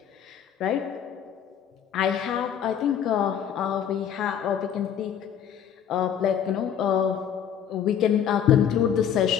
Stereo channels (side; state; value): right; quieter; 8.9 dB